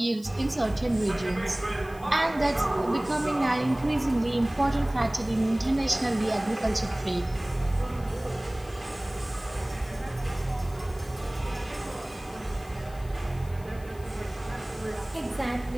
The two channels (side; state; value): left; noise; hiss, 24 dB below the sound